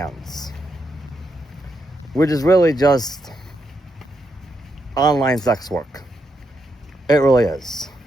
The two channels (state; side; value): normal; both; correlation 0.81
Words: which is really just online sex work. It really is.